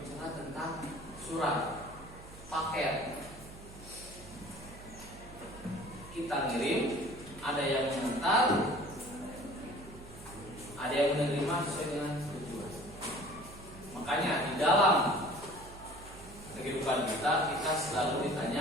tentang surat paket. Kita ngirim, ada yang mengantar, ada yang menerima sesuai dengan tujuan. Makanya di dalam kehidupan kita selalu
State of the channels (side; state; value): right; noise; hum, 17 dB below the sound